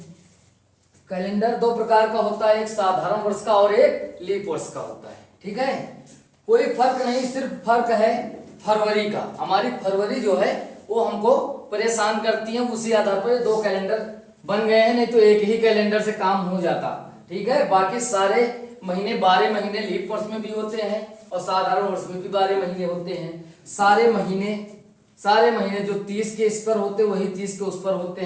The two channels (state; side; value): identical; both; correlation 1.00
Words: कैलेंडर दो प्रकार का होता है, एक साधारण वर्ष का और एक लीप वर्ष का होता है। ठीक है, कोई फर्क नहीं, सिर्फ फर्क है फरवरी का। हमारी फरवरी जो है वो हमको परेशान करती है, उसी आधार पर दो कैलेंडर बन गए हैं, नहीं तो एक ही कैलेंडर से काम हो जाता। ठीक है, बाकी सारे महीने 12 महीने लीप वर्ष में भी होते हैं और साधारण वर्ष में भी 12 महीने होते हैं। सारे महीने जो 30 के इस पर होते हैं वही 30 के उस पर होते